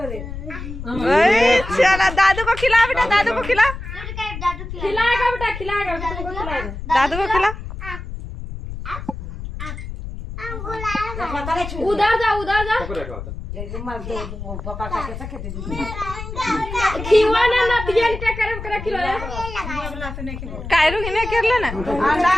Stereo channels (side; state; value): left; noise; rumble, 9 dB below the sound